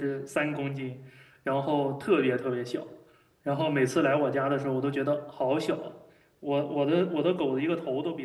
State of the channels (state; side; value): identical; both; correlation 1.00